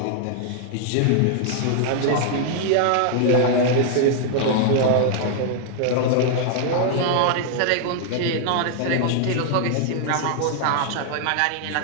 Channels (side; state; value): both; different; correlation -0.01